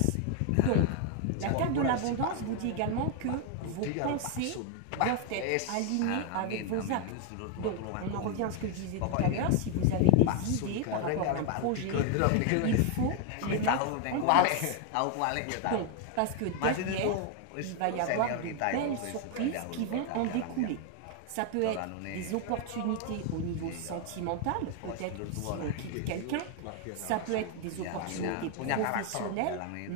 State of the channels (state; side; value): different; both; correlation 0.01